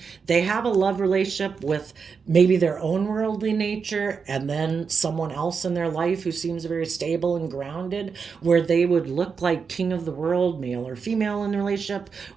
They have a love relationship with maybe their own worldly nature, and then someone else in their life who seems very stable and grounded, where they would look like king of the world, male or female in the relationship,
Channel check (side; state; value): left; quieter; 5.6 dB